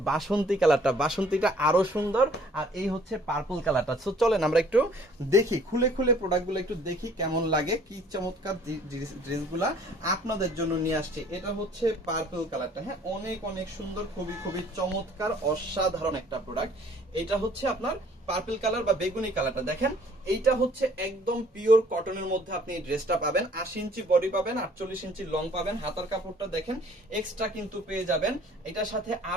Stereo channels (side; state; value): both; normal; correlation 0.57